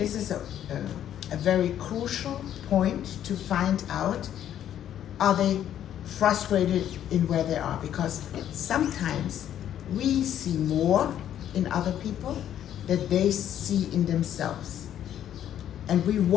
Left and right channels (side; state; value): right; quieter; 10.7 dB